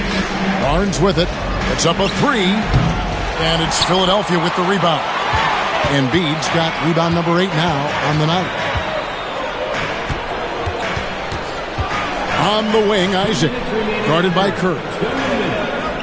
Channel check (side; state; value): both; identical; correlation 1.00